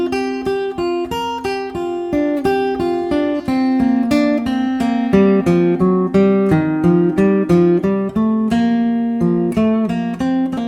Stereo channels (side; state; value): both; identical; correlation 1.00